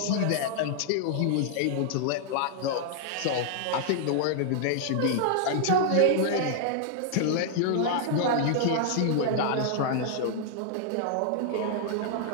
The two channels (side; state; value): both; different; correlation -0.01